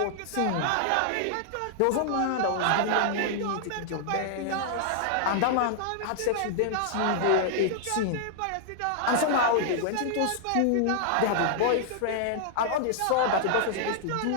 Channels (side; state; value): both; different; correlation -0.01